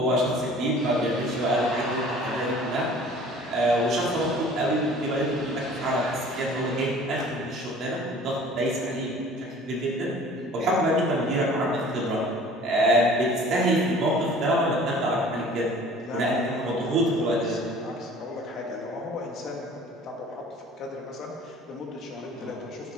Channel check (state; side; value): normal; both; correlation 0.48